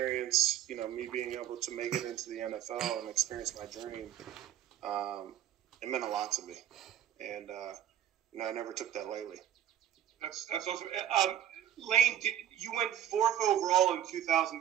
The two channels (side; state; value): left; quieter; 11.0 dB